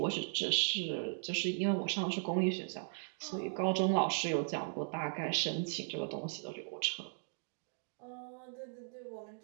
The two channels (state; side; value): silent; left; digital silence